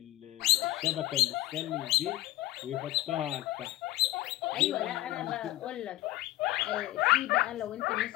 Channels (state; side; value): quieter; right; 15.8 dB